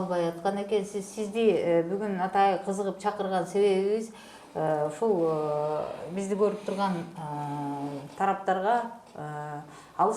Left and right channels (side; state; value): both; identical; correlation 1.00